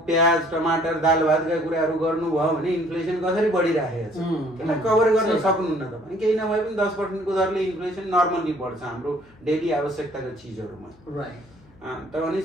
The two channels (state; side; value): noise; left; hum, 28 dB below the sound